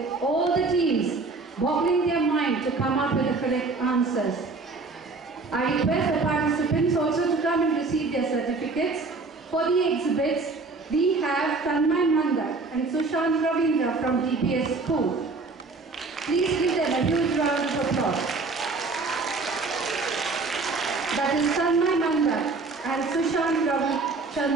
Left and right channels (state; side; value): quieter; left; 3.8 dB